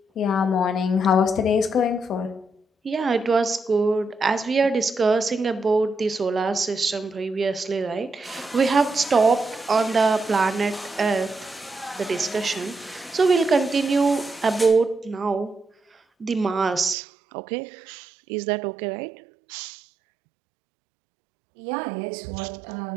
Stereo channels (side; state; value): left; drops out; at 16.9 s